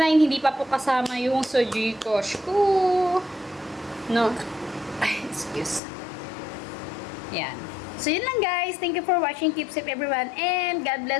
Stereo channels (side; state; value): right; drops out; at 5.8 s